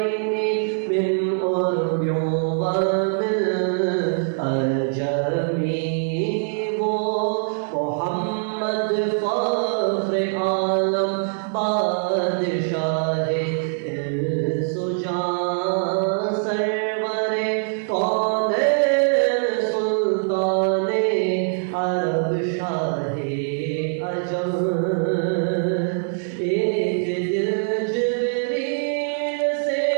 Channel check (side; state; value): left; silent; digital silence